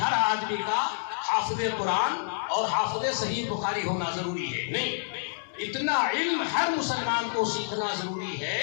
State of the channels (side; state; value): right; silent; digital silence